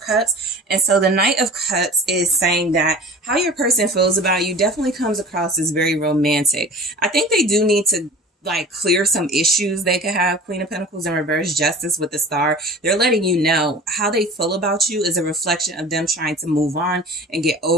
And so the Knight of Cups is saying that how your person feels about you definitely comes across as very romantic. I think they do need to like clear some issues they could have. Queen of Pentacles in reverse, Justice with the Star. They're letting you know how they feel about you is a reflection of them trying to move on and get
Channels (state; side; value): normal; both; correlation 0.40